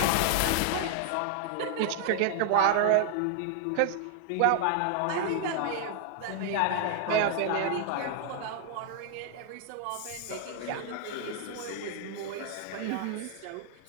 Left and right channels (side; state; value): both; different; correlation 0.00